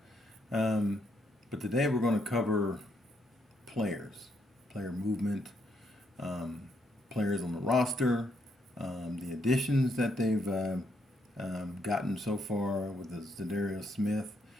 Um, but today we're going to cover players, player movement, um, players on the roster, the additions that they've gotten so far with the Zadarius Smith,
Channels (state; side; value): normal; both; correlation 0.75